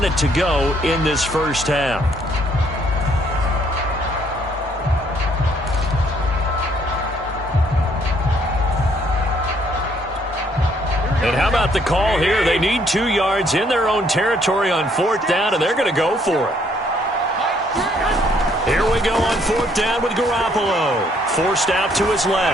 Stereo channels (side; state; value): both; normal; correlation 0.66